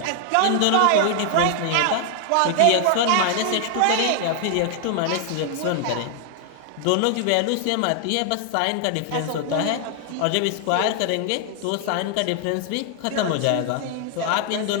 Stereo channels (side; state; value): both; different; correlation 0.00